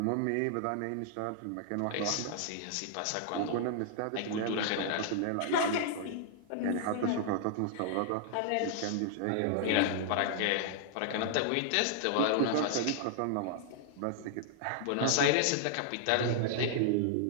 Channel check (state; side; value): different; both; correlation -0.01